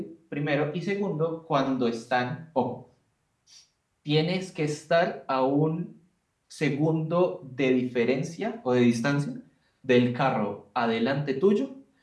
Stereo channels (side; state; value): both; identical; correlation 1.00